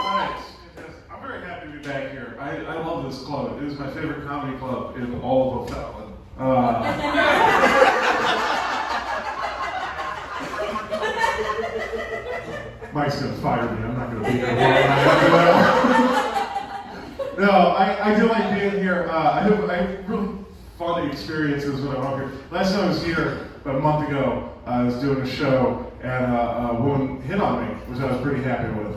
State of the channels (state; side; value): identical; both; correlation 1.00